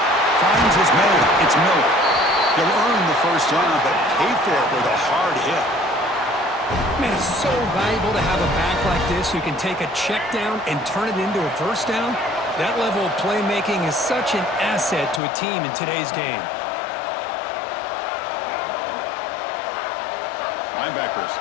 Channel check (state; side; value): drops out; right; at 15.2 s